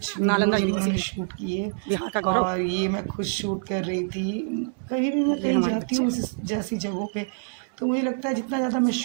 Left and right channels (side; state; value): left; silent; digital silence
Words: वीडियोज़ भी उन्होंने शूट किए और ये मैं खुद शूट कर रही थी। कभी भी मैं कहीं जाती हूँ इस जैसी जगहों पे तो मुझे लगता है जितना ज़्यादा मैं